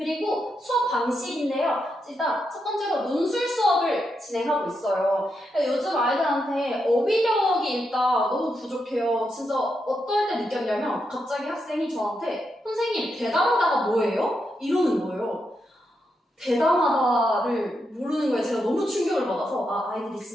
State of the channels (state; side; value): normal; both; correlation 0.83